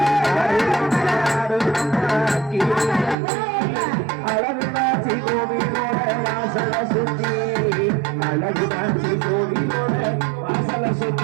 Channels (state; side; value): drops out; left; at 3.2 s